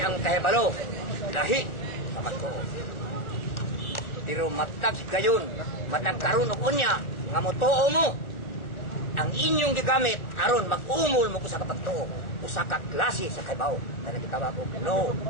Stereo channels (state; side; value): late; right; 1.4 ms